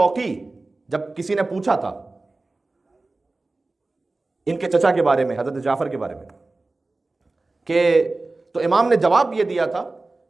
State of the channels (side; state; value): left; quieter; 3.2 dB